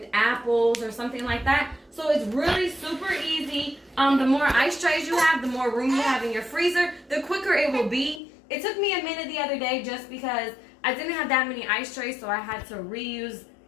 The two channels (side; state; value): right; drops out; at 8.2 s